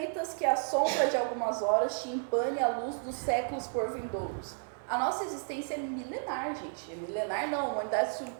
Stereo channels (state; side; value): silent; left; 56 dB below the other